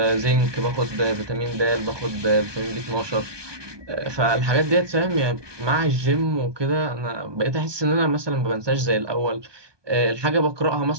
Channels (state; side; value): late; left; 1.2 ms